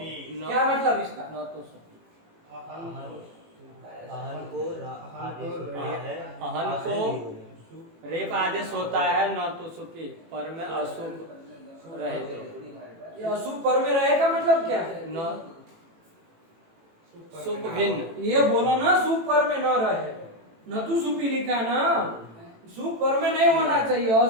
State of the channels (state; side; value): late; left; 18 ms